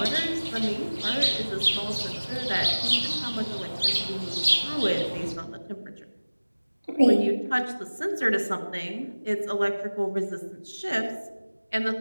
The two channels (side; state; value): both; inverted; correlation -1.00